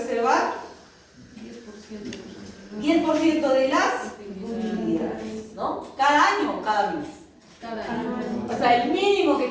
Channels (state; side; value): identical; both; correlation 1.00